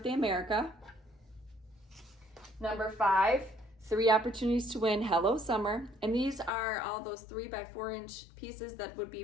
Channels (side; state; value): right; drops out; at 6.5 s